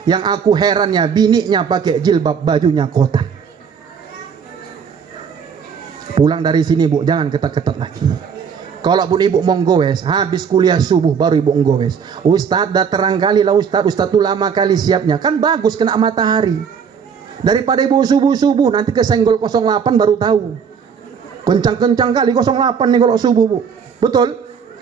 Yang aku herannya, bininya pakai jilbab, bajunya kotak. Pulang dari sini, Bu, jangan ketat-ketat lagi. Kalau pun ibu mau goes, habis kuliah subuh baru ibu goes. Ustadz dah terang kali lah Ustadz tuh lama kali siapnya. Kan bagus kena matahari. Daripada ibu subuh-subuh nanti kesenggol 08 baru tahu. Kencang-kencang kali 08 nih kalau subuh, Bu. Betul?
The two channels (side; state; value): left; quieter; 6.7 dB